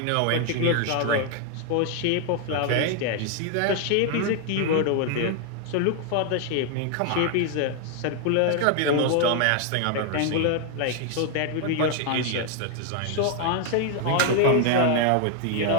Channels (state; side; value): different; both; correlation 0.00